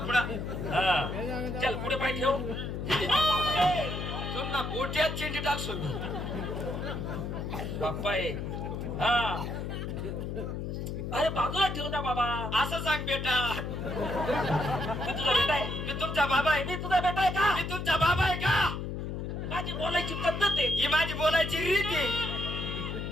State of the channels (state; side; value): noise; left; hum, 4 dB below the sound